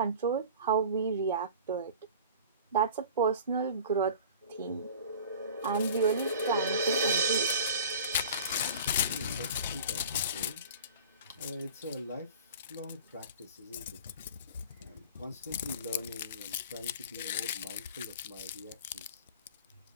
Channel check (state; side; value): inverted; both; correlation -0.40